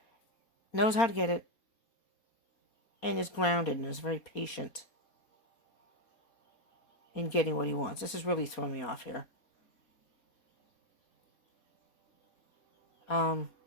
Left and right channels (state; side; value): late; right; 4.3 ms